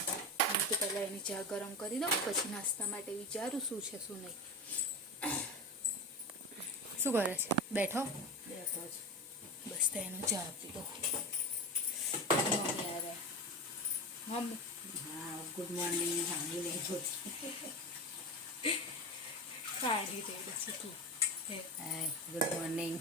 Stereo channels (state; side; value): normal; both; correlation 0.24